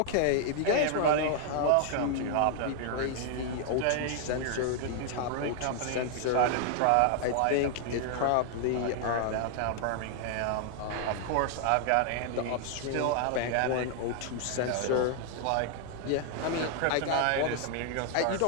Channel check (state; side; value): different; both; correlation 0.00